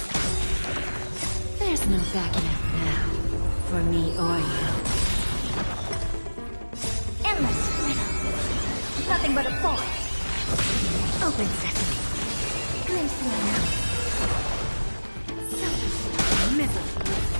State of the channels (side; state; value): both; inverted; correlation -1.00